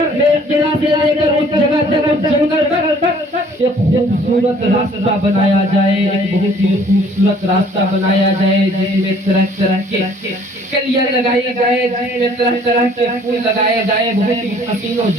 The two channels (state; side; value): normal; both; correlation 0.57